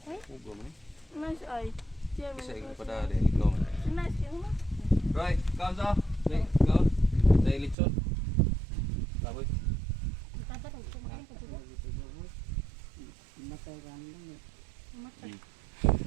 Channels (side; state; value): left; drops out; at 7.8 s